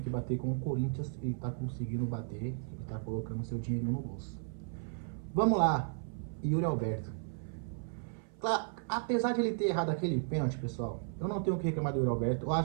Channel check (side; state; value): left; silent; 55 dB below the other